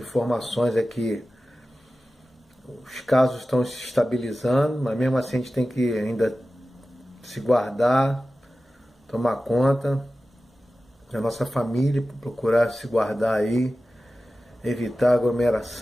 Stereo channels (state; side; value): normal; both; correlation 0.95